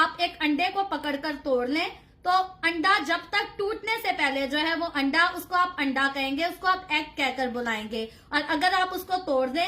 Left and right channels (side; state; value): both; identical; correlation 1.00